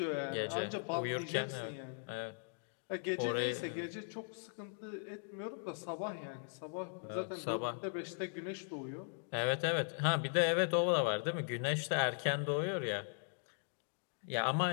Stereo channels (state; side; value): silent; right; digital silence